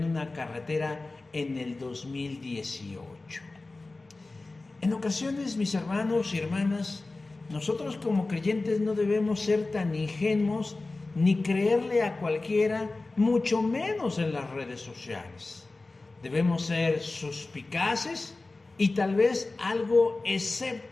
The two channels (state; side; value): quieter; right; 3.3 dB